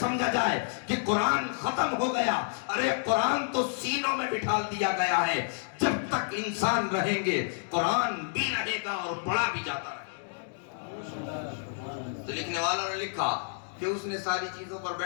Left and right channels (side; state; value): right; silent; digital silence